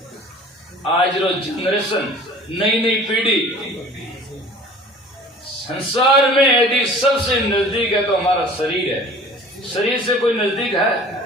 आज रोज जनरेशन, नई नई पीढ़ी, संसार में यदि सबसे नजदीक है तो हमारा शरीर है। शरीर से कोई नजदीक है?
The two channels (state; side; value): normal; both; correlation 0.46